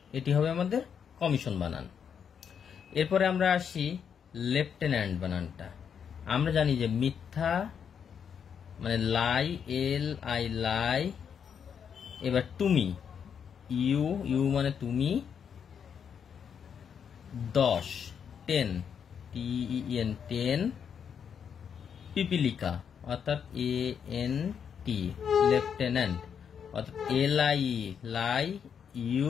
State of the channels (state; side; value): quieter; right; 7.5 dB